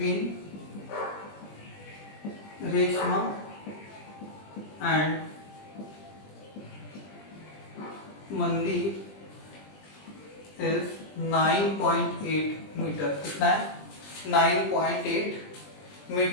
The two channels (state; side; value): late; right; 20 ms